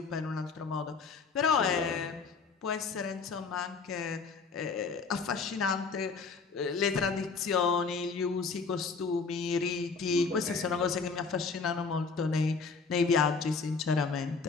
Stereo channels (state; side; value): quieter; right; 4.8 dB